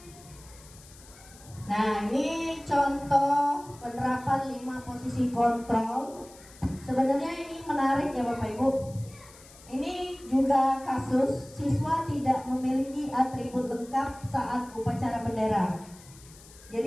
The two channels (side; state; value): left; noise; hiss, 22 dB below the sound